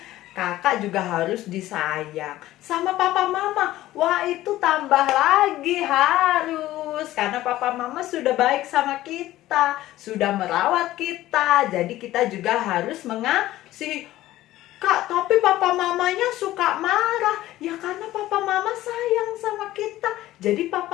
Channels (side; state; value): right; quieter; 15.3 dB